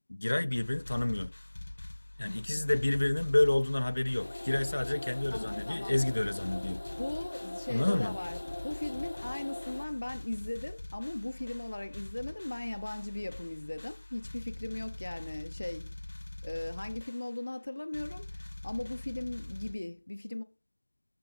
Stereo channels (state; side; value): inverted; both; correlation -1.00